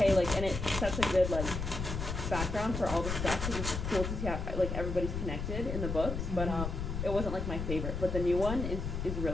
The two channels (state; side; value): noise; left; rumble, 3 dB below the sound